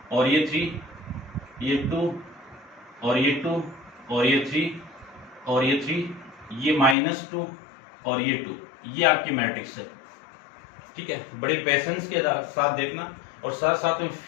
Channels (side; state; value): right; drops out; at 7.0 s